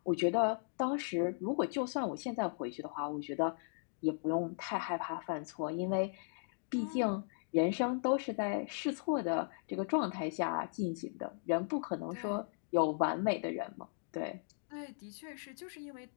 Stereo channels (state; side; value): silent; right; digital silence